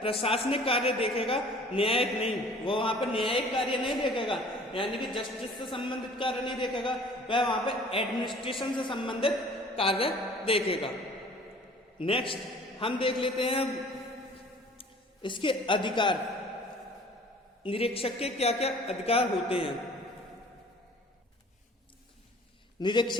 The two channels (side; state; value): both; normal; correlation 0.50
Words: प्रशासनिक कार्य देखेगा, न्यायिक नहीं। वो वहां पर न्यायिक कार्य नहीं देखेगा, यानी कि जस्टिस से संबंधित कार्य नहीं देखेगा, वह वहां पर एडमिनिस्ट्रेशन से संबंधित कार्य देखेगा। नेक्स्ट हम देख लेते हैं इसके अधिकार, निरीक्षक के क्या क्या अधिकार होते हैं।